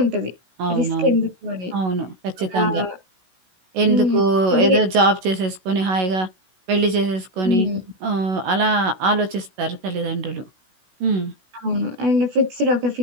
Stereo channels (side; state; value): left; late; 16 ms